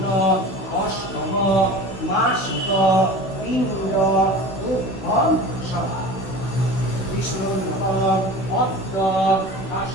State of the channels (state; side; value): late; right; 16 ms